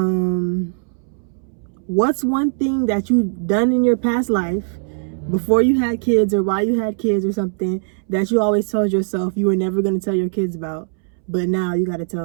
What's one thing that you've done in your past life before you had kids or while you had kids or something that you always told yourself you were never gonna tell your kids about, but now you gotta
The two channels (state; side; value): silent; left; 66 dB below the other